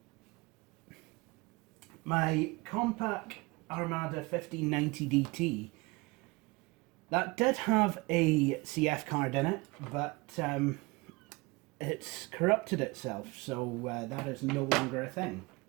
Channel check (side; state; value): left; quieter; 24.7 dB